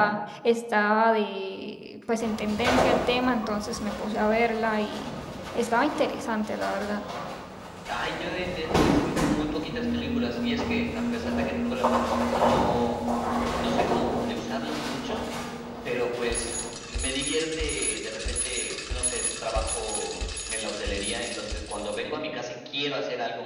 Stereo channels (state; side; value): identical; both; correlation 1.00